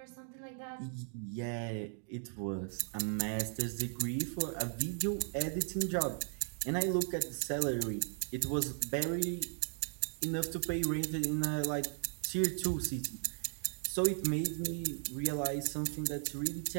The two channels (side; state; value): left; silent; 53 dB below the other